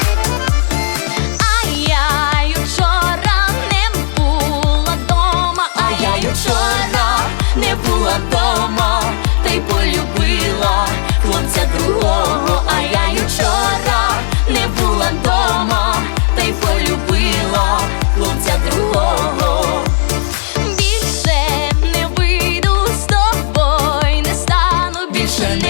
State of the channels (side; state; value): right; silent; digital silence